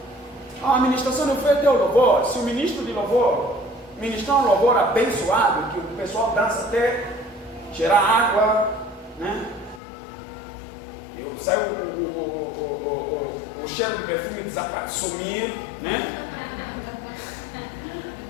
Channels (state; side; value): drops out; right; at 9.8 s